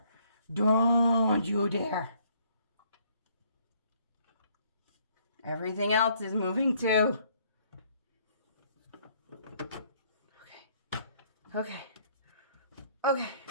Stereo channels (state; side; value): inverted; both; correlation -0.65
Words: Don't you dare. Everything else is moving too. Okay. All